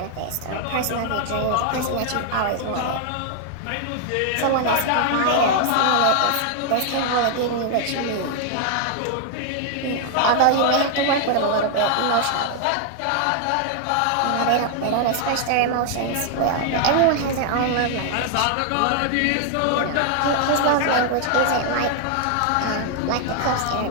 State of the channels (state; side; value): different; both; correlation 0.00